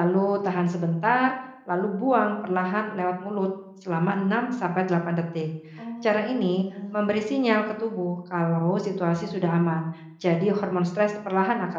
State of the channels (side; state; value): both; identical; correlation 1.00